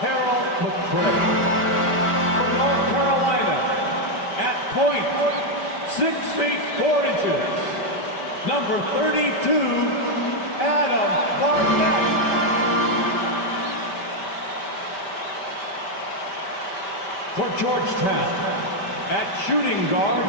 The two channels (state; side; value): late; right; 5.1 ms